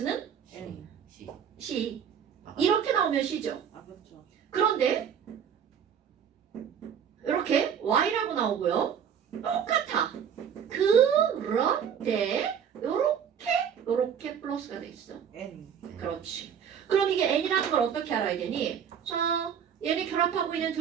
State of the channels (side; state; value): left; quieter; 8.0 dB